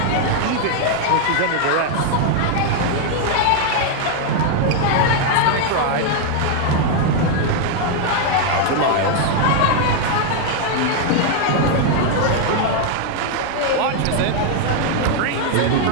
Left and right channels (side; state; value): both; different; correlation 0.00